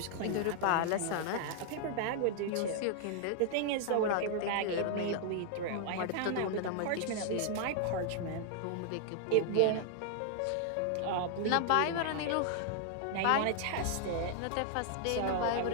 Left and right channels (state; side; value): different; both; correlation -0.01